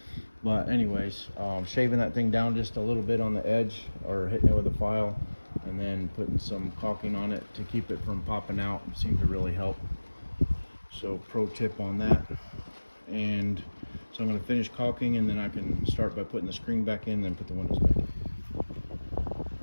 But anyways, shaving that thing down just a little bit on the edge, or hitting it with a file, and then putting some caulking on it to keep it from popping out seemed to really help. So pro tip on that. And so I'm going to finish caulking, and then I can start by putting the screen back in, then put the windows back in.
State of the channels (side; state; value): both; inverted; correlation -1.00